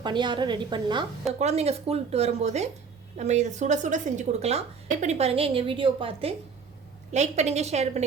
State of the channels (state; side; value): quieter; left; 5.6 dB